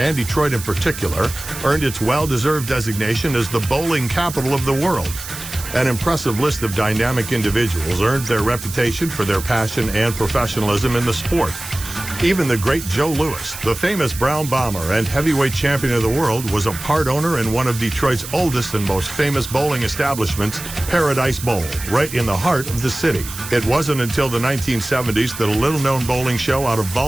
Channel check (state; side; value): noise; right; hiss, 11 dB below the sound